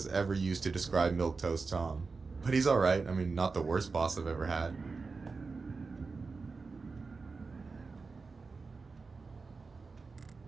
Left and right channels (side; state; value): left; quieter; 4.3 dB